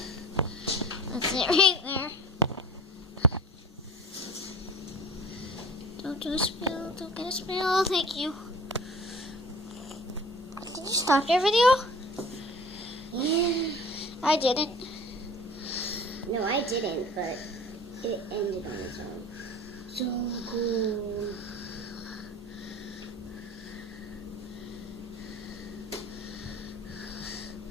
That's it right there. Don't do a spill. Don't get a spill. Thank you. Did you stop your video? Yeah. I didn't. No, I didn't, but it ended on its own. So cool.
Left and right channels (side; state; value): both; normal; correlation 0.42